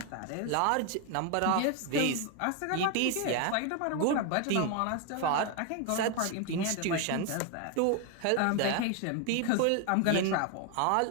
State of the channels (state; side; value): different; both; correlation 0.01